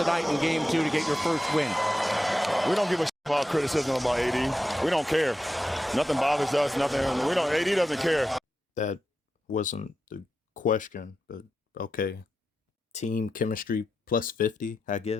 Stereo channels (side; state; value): both; normal; correlation 0.89